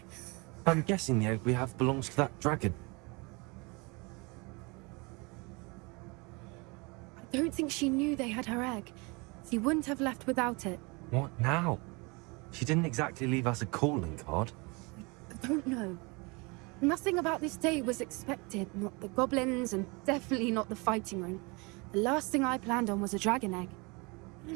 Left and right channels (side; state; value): left; quieter; 28.1 dB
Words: I'm guessing the egg we have belongs to that dragon. I don't think she knew they had her egg. She wouldn't have left without it. What now? She didn't exactly leave us a calling card. I don't know. Nothing about this day was expected. Not the goblins, and definitely not the fighting ring. The last thing I planned on was a dragon egg.